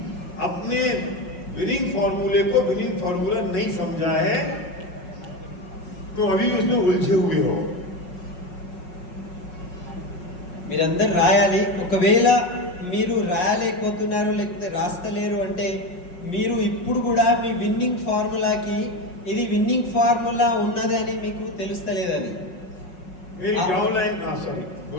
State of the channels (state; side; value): late; right; 5.5 ms